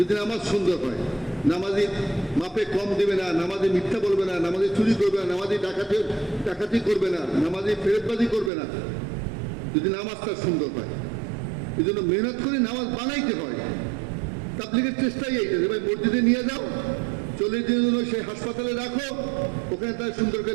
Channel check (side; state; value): left; drops out; at 8.5 s